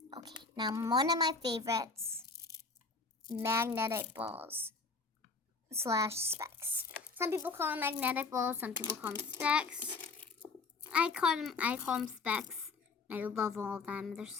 Okay, now one of my favorites, magnetic balls / specs. Some people call them magnetic balls, some people call them specs. I call them specs. I love all of them. They're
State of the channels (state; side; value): quieter; right; 4.2 dB